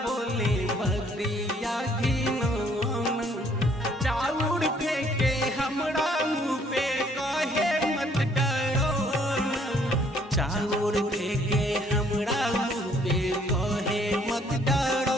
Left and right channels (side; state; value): both; normal; correlation 0.63